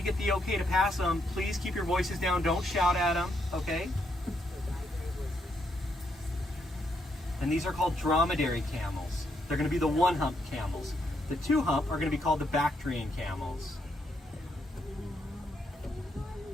get the okay to pass them. Please keep your voices down. Don't shout at them, okay? And these are called dromedary camels. They're going to be the one-hump camels. The two-hump are going to be called the Bactrian camels.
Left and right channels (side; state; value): both; normal; correlation 0.77